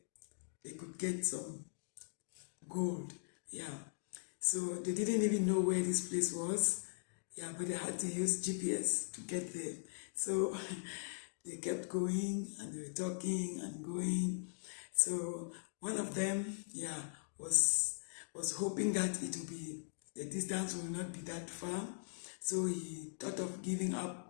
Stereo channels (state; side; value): silent; right; digital silence